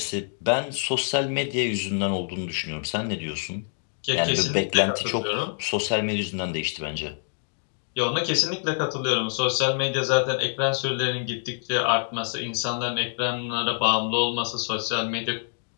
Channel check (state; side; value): silent; right; digital silence